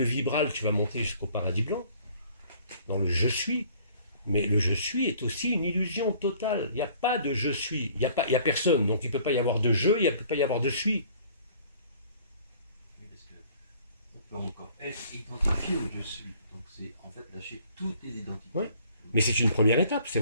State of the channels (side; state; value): both; inverted; correlation -0.55